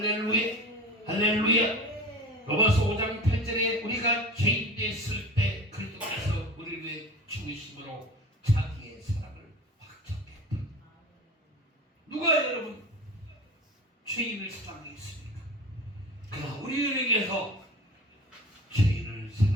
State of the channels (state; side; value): normal; both; correlation 0.34